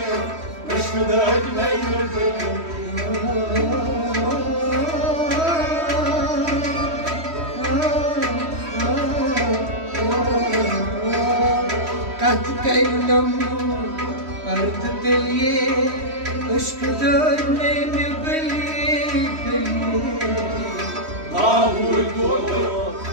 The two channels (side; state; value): left; late; 3.1 ms